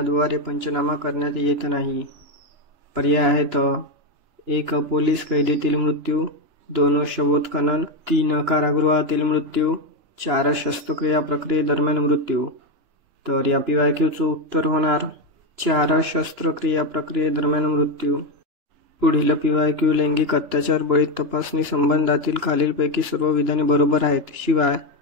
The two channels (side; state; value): left; late; 2.9 ms